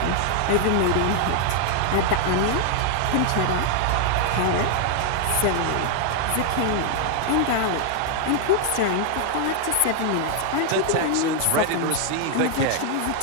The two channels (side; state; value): both; different; correlation 0.00